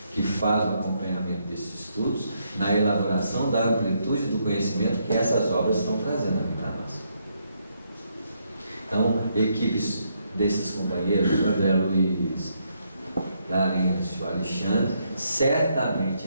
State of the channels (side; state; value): both; inverted; correlation -0.76